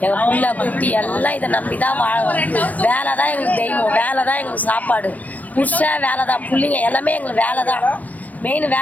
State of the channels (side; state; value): right; late; 0.078 ms